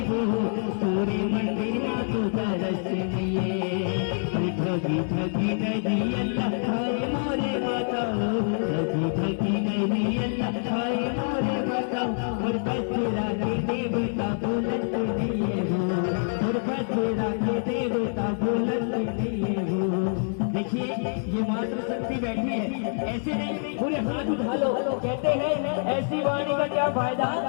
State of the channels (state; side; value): silent; right; 61 dB below the other